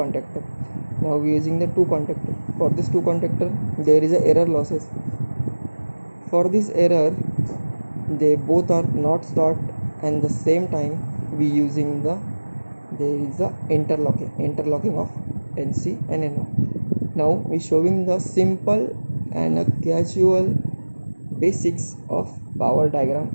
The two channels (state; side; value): inverted; both; correlation -1.00